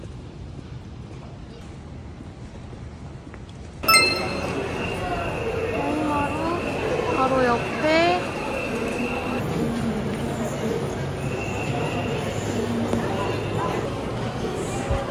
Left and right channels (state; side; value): identical; both; correlation 1.00